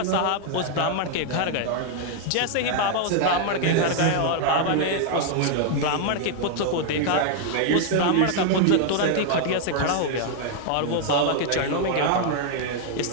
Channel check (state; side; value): different; both; correlation 0.00